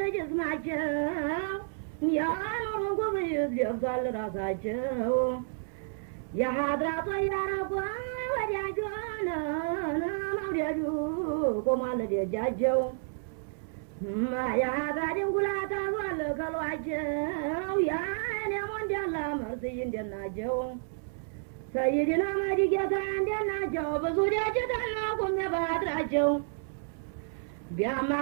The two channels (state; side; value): silent; left; 57 dB below the other